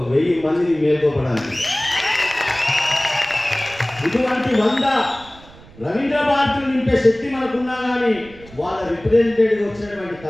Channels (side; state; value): right; noise; rumble, 22 dB below the sound